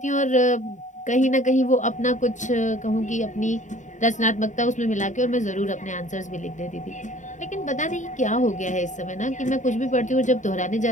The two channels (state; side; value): late; right; 0.36 ms